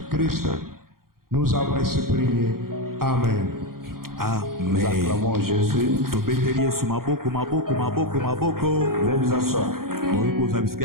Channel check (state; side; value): late; left; 0.92 ms